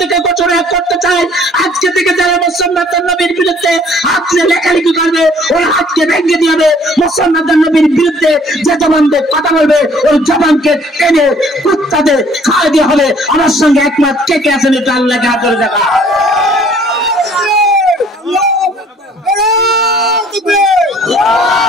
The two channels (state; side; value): normal; both; correlation 0.57